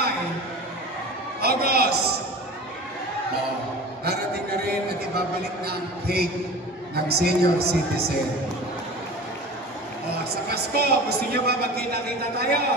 August. Darating na rin at ibabalik na ang cake ng senior citizen. Sa Pasko, gusto niyo ba magkita-kita tayo?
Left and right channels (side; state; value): both; normal; correlation 0.36